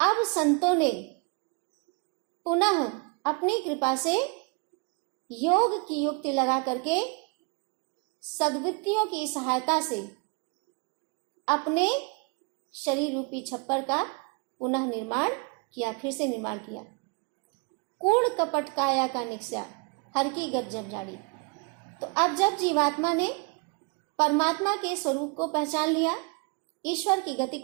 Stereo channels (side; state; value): left; quieter; 32.0 dB